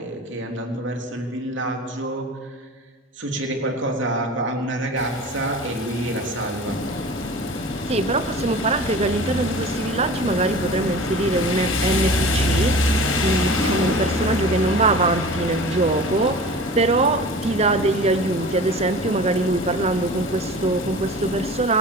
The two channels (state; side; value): normal; both; correlation 0.38